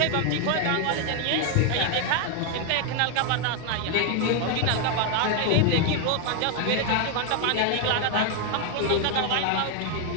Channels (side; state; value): both; different; correlation 0.01